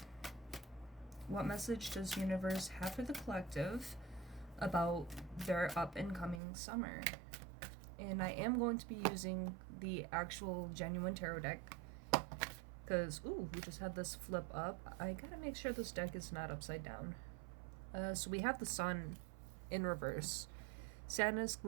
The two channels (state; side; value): drops out; left; at 6.4 s